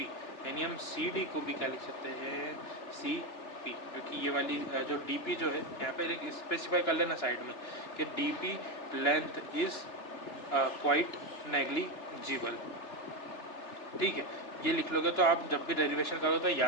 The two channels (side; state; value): right; late; 3.4 ms